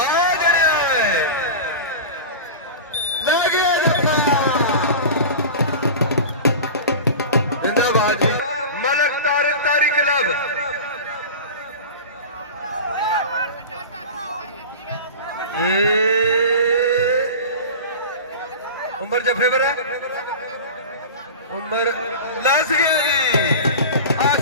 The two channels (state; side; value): inverted; both; correlation -0.31